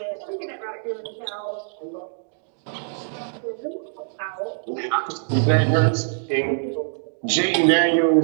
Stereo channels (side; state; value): left; silent; digital silence